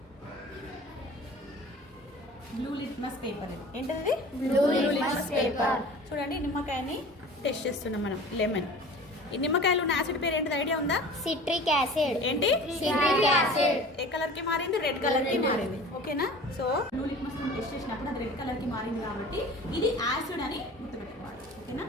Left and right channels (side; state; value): both; normal; correlation 0.41